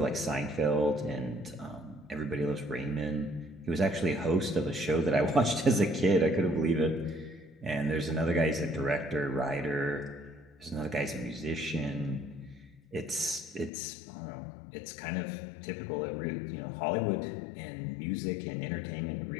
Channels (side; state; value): right; drops out; at 13.7 s